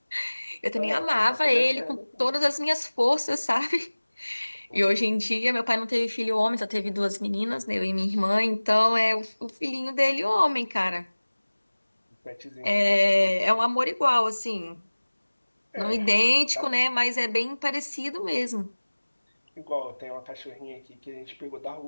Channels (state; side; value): inverted; both; correlation -1.00